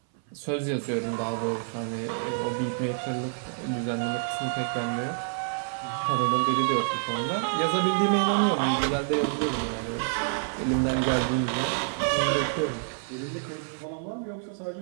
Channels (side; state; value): left; silent; 59 dB below the other